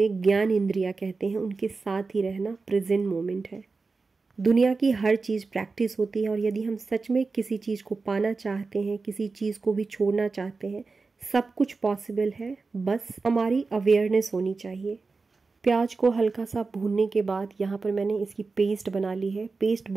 ज्ञान इंद्रियां कहते हैं, उनके साथ ही रहना प्रेजेंट मोमेंट है। दुनिया की हर चीज़ प्रैक्टिस होती है, और यदि हम सच में किसी चीज़ को पाना चाहते हैं, किसी चीज़ को भी छोड़ना चाहते हैं, सब कुछ पॉसिबल है, बस हमारी अवेयरनेस होनी चाहिए। प्याज को हल्का सा भूनने के बाद यहाँ पर मैंने इसकी पेस्ट बना ली है। पेस्ट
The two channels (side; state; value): left; quieter; 4.2 dB